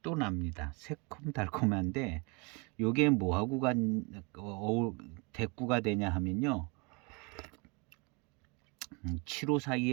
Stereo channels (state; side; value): quieter; left; 30.2 dB